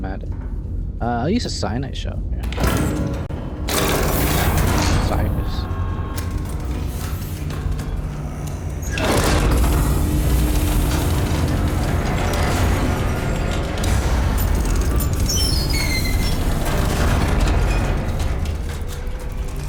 at it. I'll use a cyanide shell. Yeah. Cyrus.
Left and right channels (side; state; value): both; identical; correlation 1.00